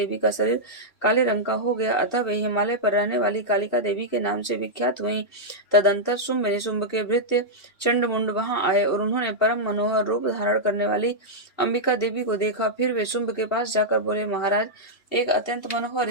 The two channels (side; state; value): right; late; 2.7 ms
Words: का शरीर काले रंग का हो गया, अतः वे हिमालय पर रहने वाली कालिका देवी के नाम से विख्यात हुई। तदंतर शुंभ निशुंभ के भृत्य चंडमुंड वहां आए और उन्होंने परम मनोहर रूप धारण करने वाली अंबिका देवी को देखा। फिर वे शुंभ के पास जाकर बोले, महाराज, एक अत्यंत